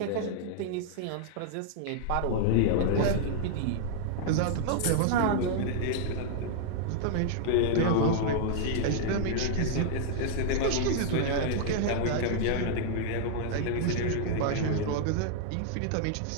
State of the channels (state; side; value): different; both; correlation -0.01